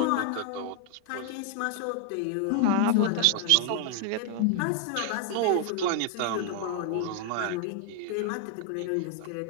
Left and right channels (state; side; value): different; both; correlation 0.00